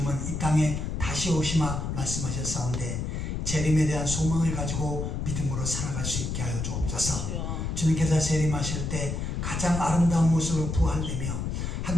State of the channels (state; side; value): noise; left; rumble, 3 dB below the sound